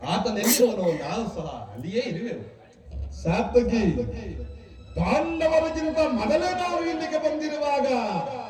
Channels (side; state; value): both; identical; correlation 1.00